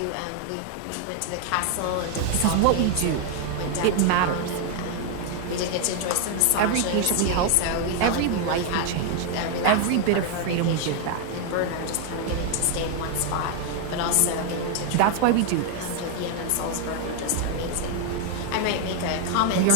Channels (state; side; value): different; both; correlation 0.00